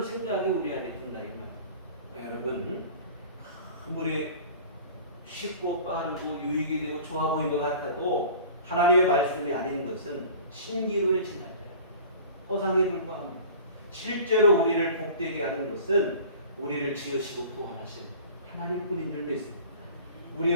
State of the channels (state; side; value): inverted; both; correlation -0.42